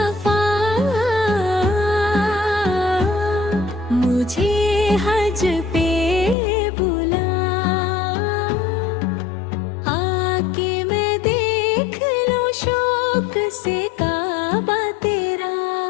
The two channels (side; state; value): right; drops out; at 6.4 s